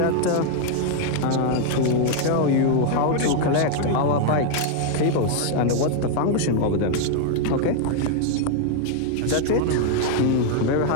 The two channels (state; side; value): different; both; correlation 0.00